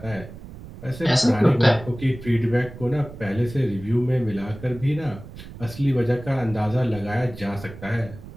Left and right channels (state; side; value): noise; right; rumble, 15 dB below the sound